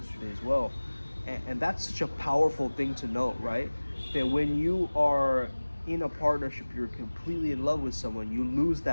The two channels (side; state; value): both; inverted; correlation -1.00